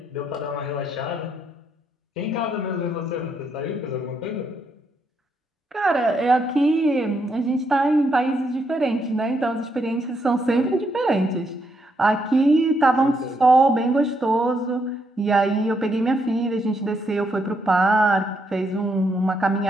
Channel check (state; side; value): normal; both; correlation 0.77